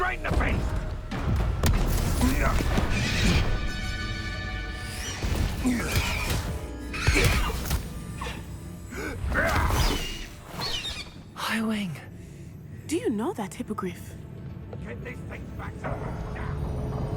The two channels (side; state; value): both; identical; correlation 1.00